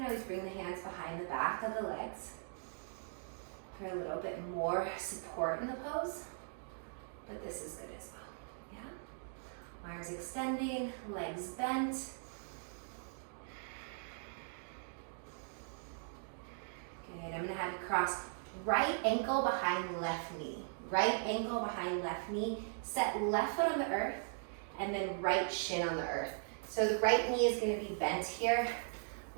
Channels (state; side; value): silent; left; digital silence